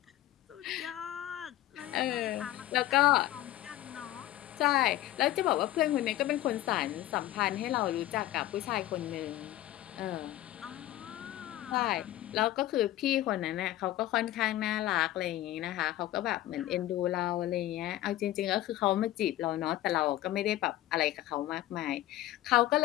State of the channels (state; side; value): quieter; right; 14.8 dB